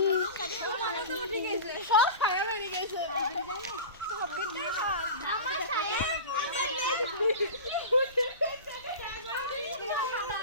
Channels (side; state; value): both; inverted; correlation -0.31